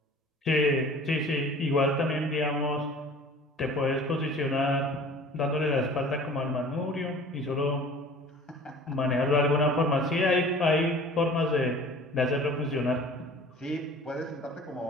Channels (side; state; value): both; normal; correlation 0.45